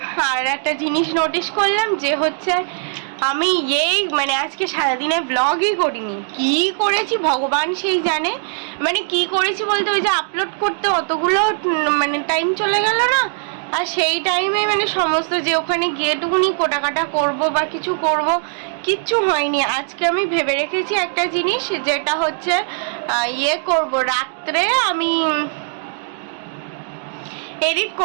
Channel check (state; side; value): silent; left; digital silence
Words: আর একটা জিনিস নোটিস করলাম যে হচ্ছে আমি মানে আজকে সারাদিনে ব্লগই করিনি। কি করেছি ভগবান সেই জানে, মানে কি করেছি বলতে ওই যে আপলোড করতে অতগুলো মানে টাইম চলে গেল না, আর সেই টাইমে মানে সমস্ত যে ওখানে গিয়েটুকুনি কোটাকাটা করব বা কিছু করব, কিচ্ছু হয়নি। আজকে আমি ভেবে রেখেছি একটা জিনিস, যেটা হচ্ছে করব রাত্রে আমি এডিট